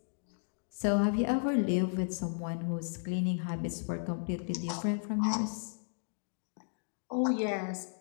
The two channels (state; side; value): silent; right; digital silence